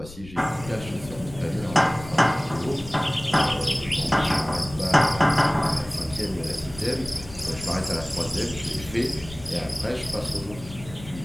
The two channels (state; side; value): noise; left; rumble, 15 dB below the sound